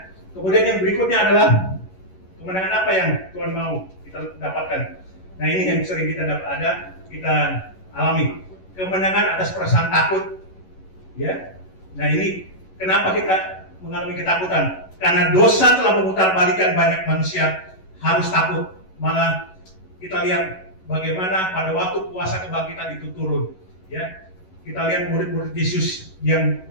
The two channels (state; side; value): late; right; 11 ms